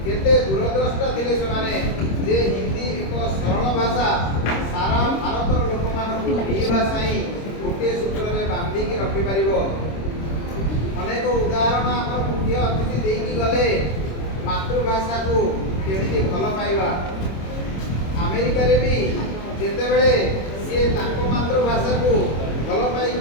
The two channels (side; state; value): right; late; 26 ms